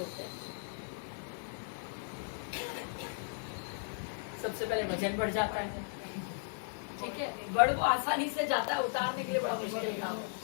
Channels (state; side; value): silent; right; 54 dB below the other